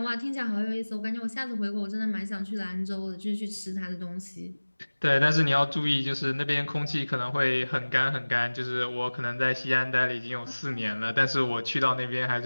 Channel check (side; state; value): both; inverted; correlation -1.00